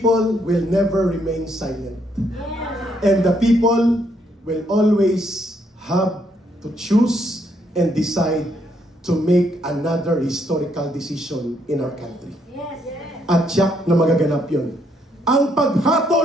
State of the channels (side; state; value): both; normal; correlation 0.73